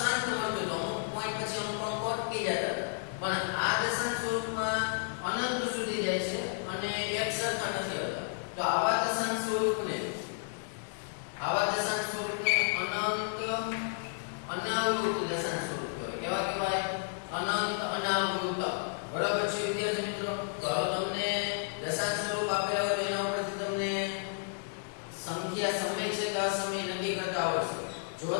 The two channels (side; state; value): right; silent; digital silence